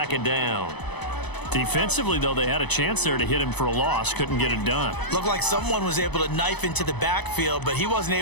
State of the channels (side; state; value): right; late; 0.99 ms